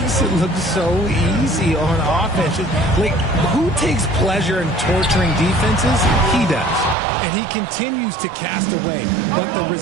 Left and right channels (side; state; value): left; drops out; at 7.0 s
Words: it look so easy on offense. Like, who takes pleasure in torturing defenses? He does. And he continues to cast away. But the